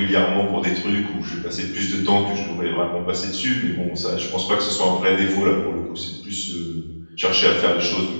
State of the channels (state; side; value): inverted; both; correlation -1.00